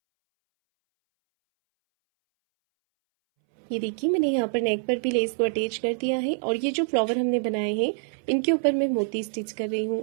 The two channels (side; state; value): left; silent; 61 dB below the other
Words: ये देखिए मैंने यहाँ पर नेक पर भी लेस को अटैच कर दिया है, और ये जो फ्लावर हमने बनाए हैं इनके ऊपर मैं मोती स्टिच कर रही